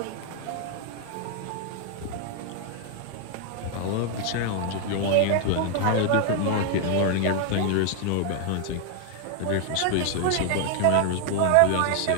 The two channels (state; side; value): different; both; correlation 0.00